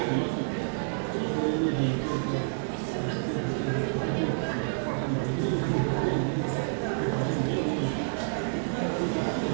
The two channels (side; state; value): left; silent; digital silence